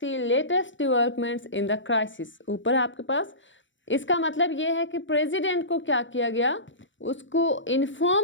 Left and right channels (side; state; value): right; late; 0.55 ms